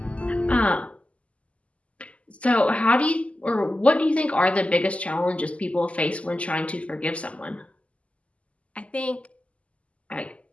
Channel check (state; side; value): late; right; 0.062 ms